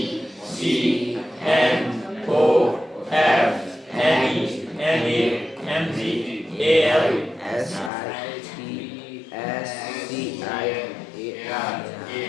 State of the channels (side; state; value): right; drops out; at 7.9 s